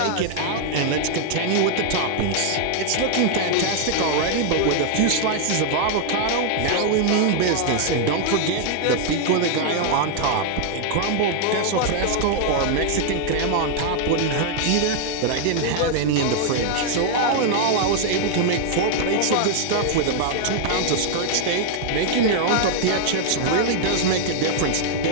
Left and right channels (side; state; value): both; different; correlation 0.00